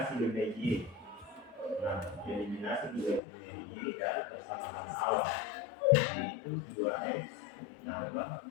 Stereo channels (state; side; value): drops out; right; at 3.2 s